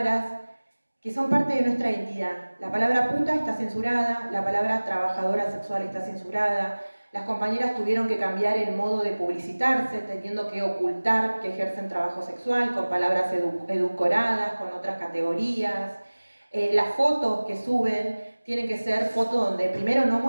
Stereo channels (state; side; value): inverted; both; correlation -1.00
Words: que son parte de nuestra identidad. La palabra puta está censurada, la palabra trabajadora sexual está censurada. Las compañeras tuvieron que cambiar el modo de publicitarse, teniendo que ocultar que ejercen trabajo sexual con palabras edulcoradas, con otras categorías. Las fotos que suben tienen que ser fotos donde primero no